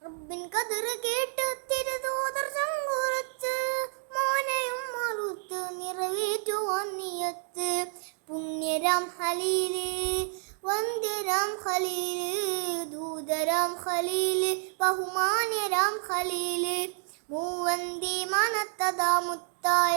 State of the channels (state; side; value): silent; left; digital silence